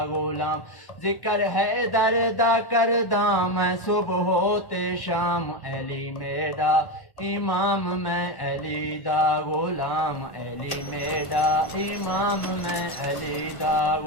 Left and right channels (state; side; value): late; right; 1.5 ms